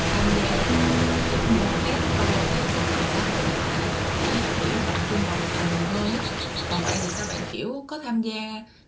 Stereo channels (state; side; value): identical; both; correlation 1.00